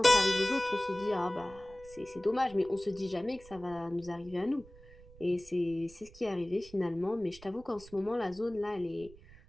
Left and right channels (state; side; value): noise; right; rumble, 22 dB below the sound